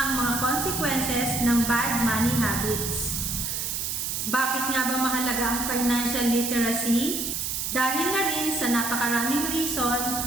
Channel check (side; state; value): right; noise; hiss, 2 dB below the sound